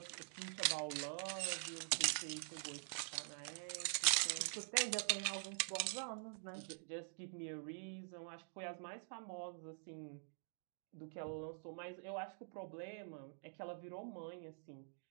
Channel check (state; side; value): silent; left; digital silence